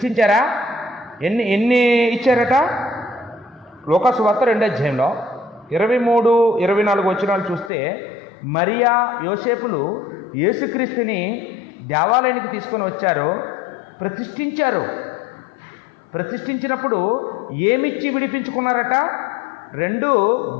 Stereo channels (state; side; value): drops out; right; at 7.7 s